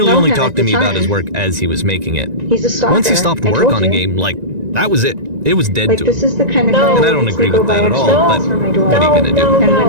know only him talk at to the me about time. his work as he was making it. He's a stalker. Once he stopped I work told on a you. game, like, that was it. It was dead Like, to this him. is the kind of No. guy And I that don't needs agree to go with that buy at all, extra but for my door. what are you gonna do?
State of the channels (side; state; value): left; late; 1.9 ms